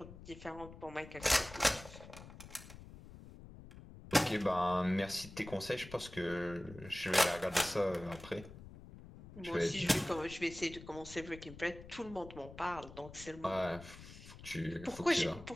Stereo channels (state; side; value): noise; left; rumble, 16 dB below the sound